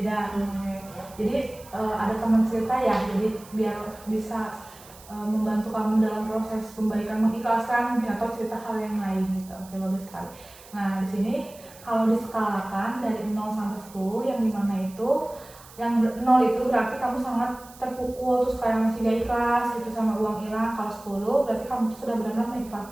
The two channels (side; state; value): right; noise; hiss, 21 dB below the sound